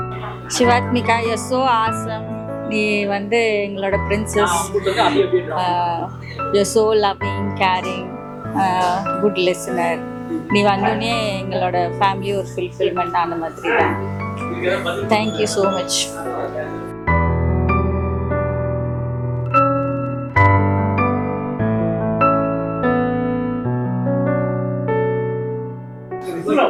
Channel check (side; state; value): both; identical; correlation 1.00